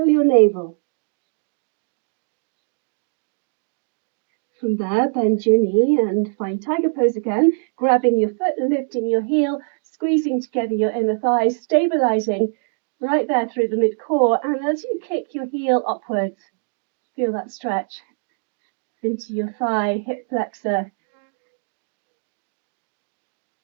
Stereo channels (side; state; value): left; silent; 64 dB below the other